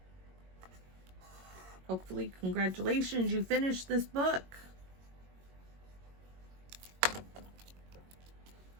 Hopefully, congratulations, you finished this book.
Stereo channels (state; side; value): late; left; 22 ms